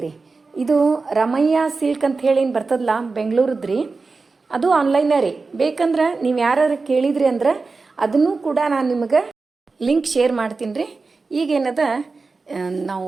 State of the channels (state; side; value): quieter; left; 4.1 dB